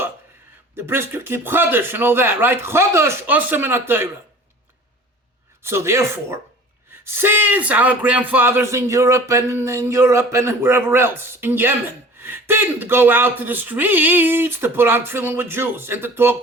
The brisker keep Chodesh and all that, right? Chodesh osem min haTorah. So therefore, since our grandfathers in Europe and wherever else, in Yemen, didn't go out to the streets to put on tefillin with Jews and to talk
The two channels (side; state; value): both; normal; correlation 0.44